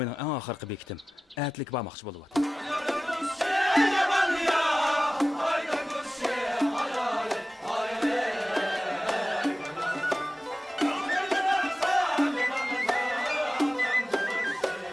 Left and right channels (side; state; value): both; normal; correlation 0.96